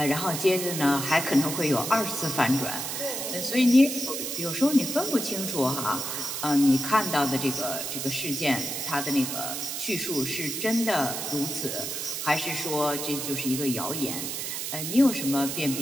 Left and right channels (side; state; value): right; noise; hiss, 4 dB below the sound